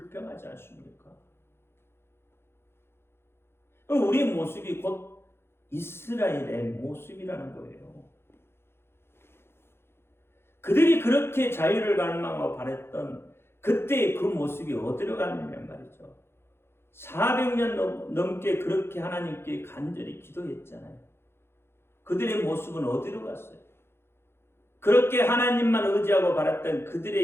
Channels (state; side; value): late; right; 0.12 ms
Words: 않습니까? 우리의 모습이 곧 이스라엘의 모습이라는 거예요. 그들이 그렇게 자유를 갈망하고 바랬던 그때의 그 모습이 어디로 갔느냐 말이죠. 400년 넘게 그렇게 하나님께 간절히 기도했잖아요. 그들의 모습은 어디로 갔어요? 그렇게 하나님만 의지하고 바랐던